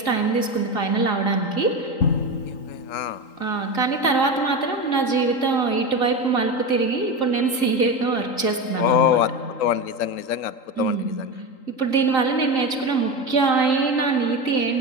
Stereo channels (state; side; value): late; right; 3.8 ms